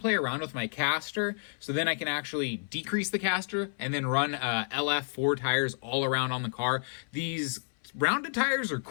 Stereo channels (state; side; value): silent; right; 56 dB below the other